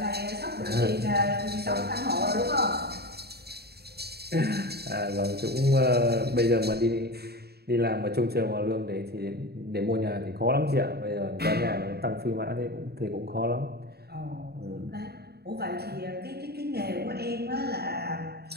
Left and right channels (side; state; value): left; late; 0.47 ms